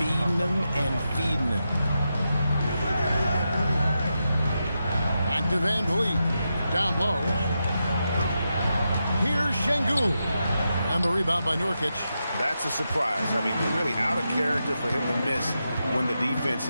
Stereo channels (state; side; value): inverted; both; correlation -0.87